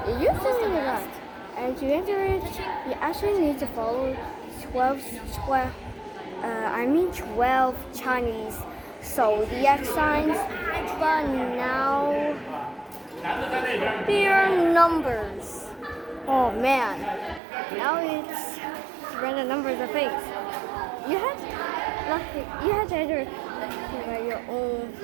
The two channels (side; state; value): left; drops out; at 17.4 s